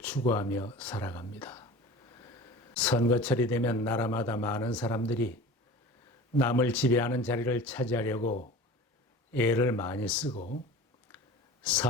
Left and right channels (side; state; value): both; normal; correlation 0.38